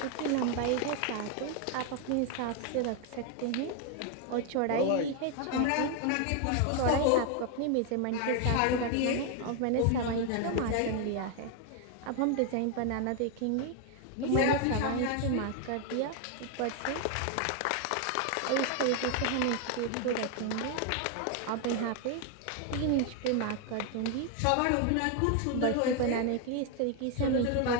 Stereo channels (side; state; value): both; different; correlation 0.01